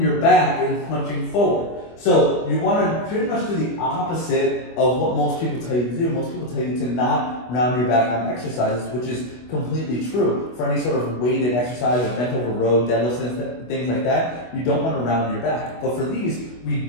back and punching forward. So you want to pretty much do the opposite of what most people tell you to do. Most people tell you to not round your back on exercises, which is completely true. For any sort of weighted exercise, or bent over row, deadlifts, and things like that, you don't want to round your back. But for these, we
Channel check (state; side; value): late; right; 24 ms